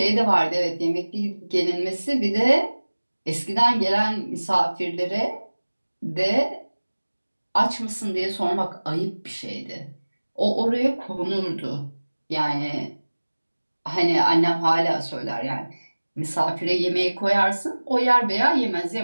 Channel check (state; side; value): inverted; both; correlation -1.00